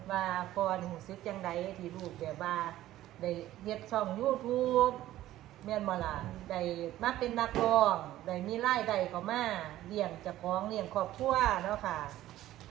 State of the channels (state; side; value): quieter; left; 14.3 dB